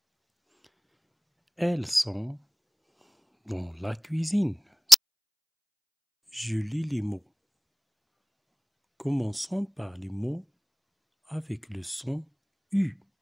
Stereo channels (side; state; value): both; identical; correlation 1.00